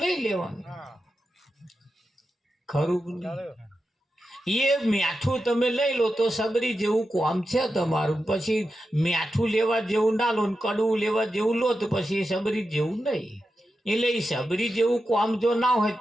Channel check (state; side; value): normal; both; correlation 0.90